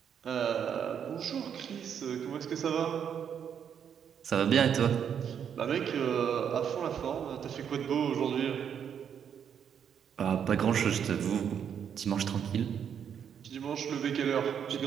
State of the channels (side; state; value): left; quieter; 8.1 dB